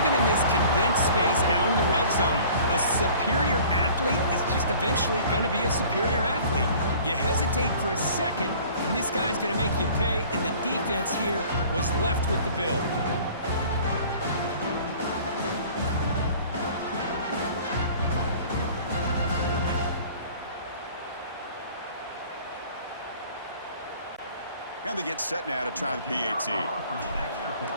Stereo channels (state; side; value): inverted; both; correlation -0.48